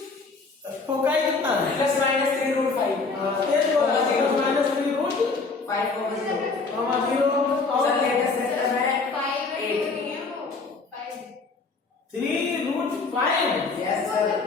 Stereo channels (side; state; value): right; quieter; 4.2 dB